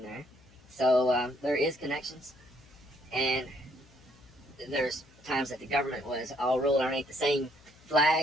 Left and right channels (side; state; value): left; noise; hum, 27 dB below the sound